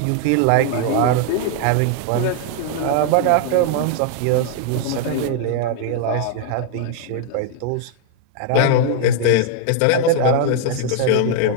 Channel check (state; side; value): different; both; correlation 0.00